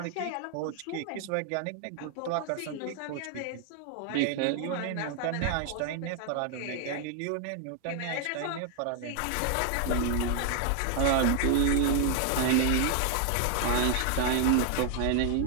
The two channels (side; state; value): both; different; correlation 0.00